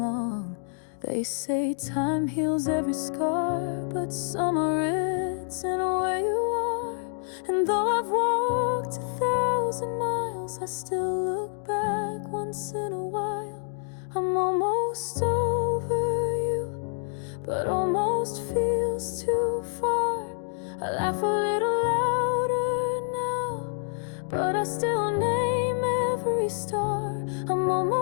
They say time heals every scar, but some are written where you are. And though I've walked 1,000 miles, I still look back once in a while. I'm almost over you, but almost feels too far. I laugh a little louder now, but I still name every star. I'm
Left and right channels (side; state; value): right; silent; digital silence